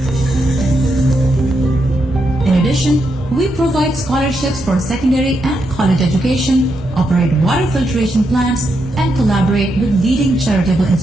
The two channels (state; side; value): normal; both; correlation 0.82